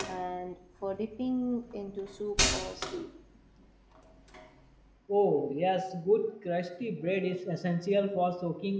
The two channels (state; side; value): identical; both; correlation 1.00